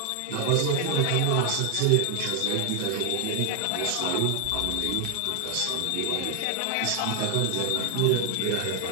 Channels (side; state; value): both; different; correlation 0.00